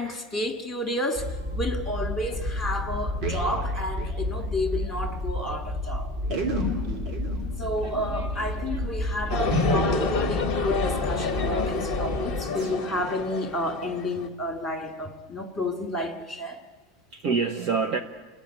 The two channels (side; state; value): both; normal; correlation 0.34